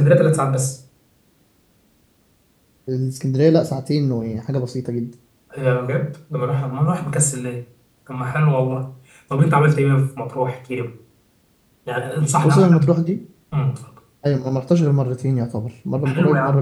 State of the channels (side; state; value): both; identical; correlation 1.00